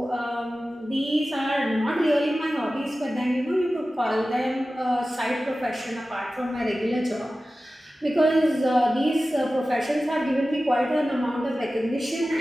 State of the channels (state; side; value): normal; both; correlation 0.95